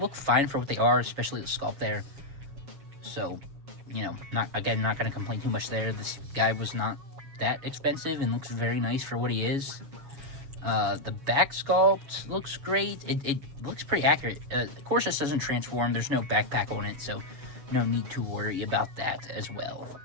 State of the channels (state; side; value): late; left; 7.1 ms